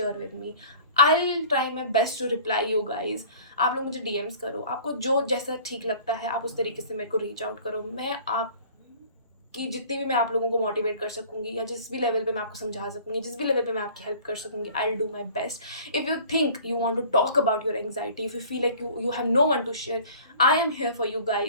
with me. I will try my best to reply you guys. आप लोग मुझे DMs करो, आपको जो जैसा ठीक लगता है आप उस तरीके से मेरे को रीच आउट करो। मैं आप कि जितनी भी मैं आप लोगों को मोटिवेट कर सकूँगी या जिस भी लेवल पे मैं आपको समझा सकूँगी, जिस भी लेवल पे मैं आपकी हेल्प कर सकूँगी, I will do my best. If you think you want to talk about your anxiety, if you feel like you have no one to share, I am here for you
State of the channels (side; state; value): both; inverted; correlation -0.47